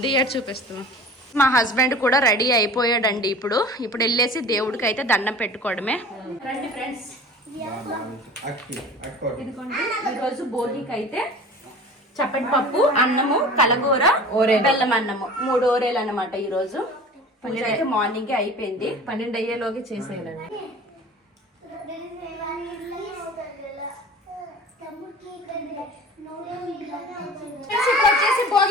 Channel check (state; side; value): normal; both; correlation 0.41